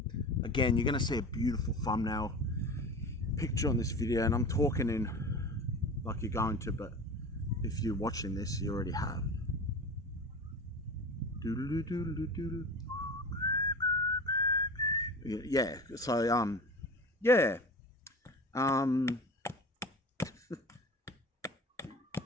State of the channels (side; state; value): both; normal; correlation 0.34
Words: Again, you're gonna see a beautiful thumbnail picture on this video, and I'm talking in like you're going to, but if you're watching this, you already have. Yeah, so yeah,